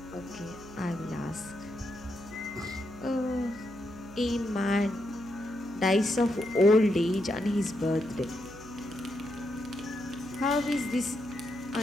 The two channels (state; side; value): noise; right; hum, 17 dB below the sound